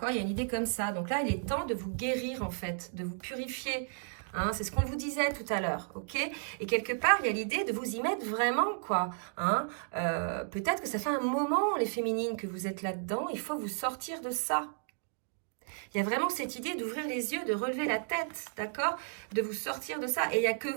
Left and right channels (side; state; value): left; silent; digital silence